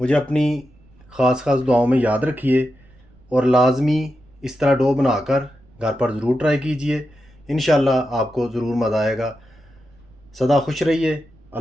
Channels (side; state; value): right; noise; rumble, 28 dB below the sound